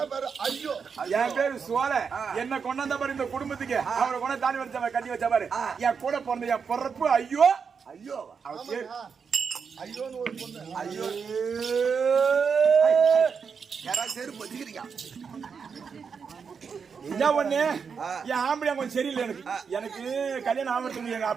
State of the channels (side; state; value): left; quieter; 6.0 dB